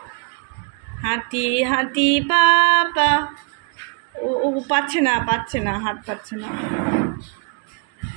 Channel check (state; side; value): quieter; left; 33.1 dB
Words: হাতি হাতি পাপা। ও ও পাচ্ছে না, পাচ্ছে না, হাত পাচ্ছে না।